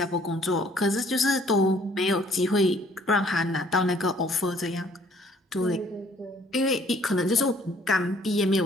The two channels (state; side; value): normal; both; correlation 0.59